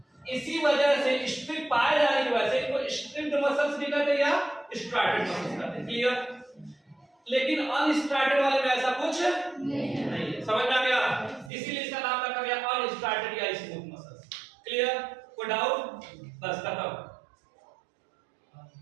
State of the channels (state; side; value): drops out; left; at 11.5 s